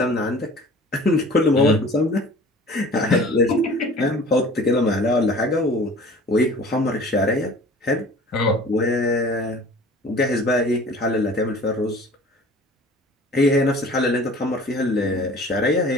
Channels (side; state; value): both; normal; correlation 0.46